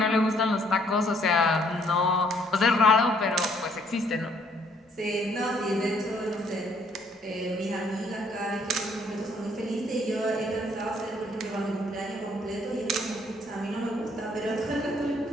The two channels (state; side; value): normal; both; correlation 0.65